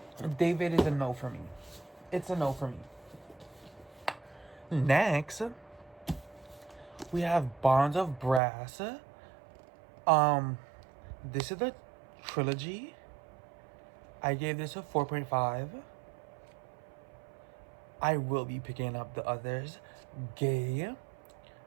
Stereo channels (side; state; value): left; drops out; at 8.4 s